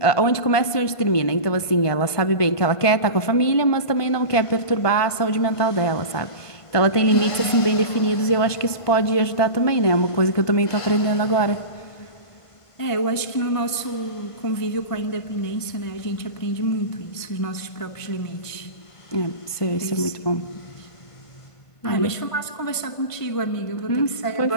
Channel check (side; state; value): right; late; 1.5 ms